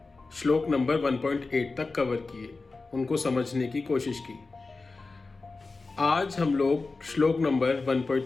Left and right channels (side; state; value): right; quieter; 3.8 dB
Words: श्लोक नंबर 1.8 तक कवर किए, उनको समझने की कोशिश की। आज हम लोग श्लोक नंबर